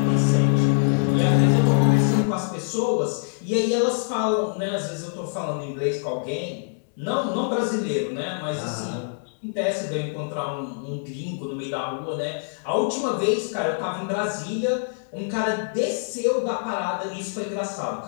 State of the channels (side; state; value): right; silent; digital silence